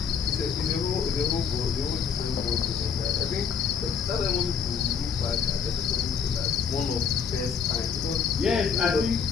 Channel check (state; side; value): quieter; right; 6.5 dB